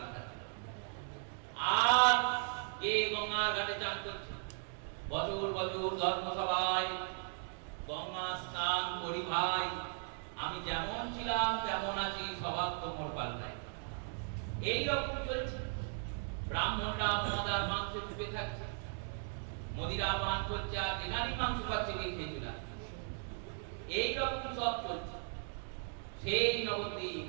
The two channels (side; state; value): left; silent; 53 dB below the other